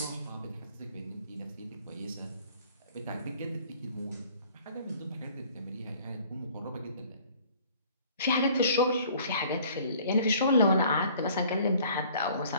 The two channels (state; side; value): inverted; both; correlation -0.54